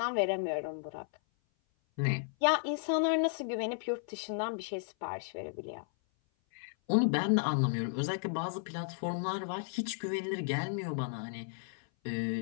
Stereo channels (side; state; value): right; silent; 55 dB below the other